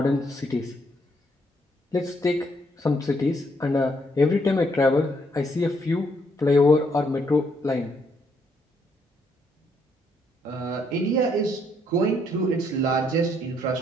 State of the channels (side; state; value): both; normal; correlation 0.72